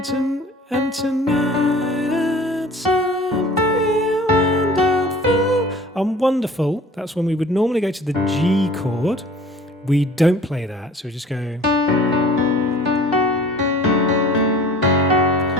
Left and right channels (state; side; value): normal; both; correlation 0.45